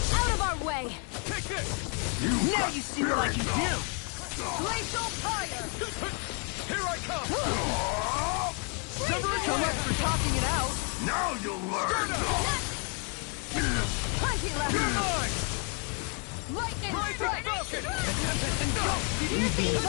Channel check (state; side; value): quieter; right; 36.6 dB